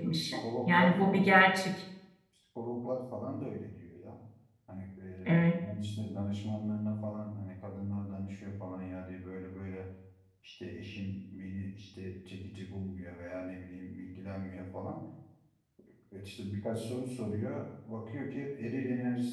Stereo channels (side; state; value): both; identical; correlation 1.00